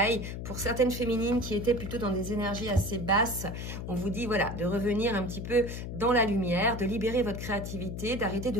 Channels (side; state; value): left; noise; hum, 6 dB below the sound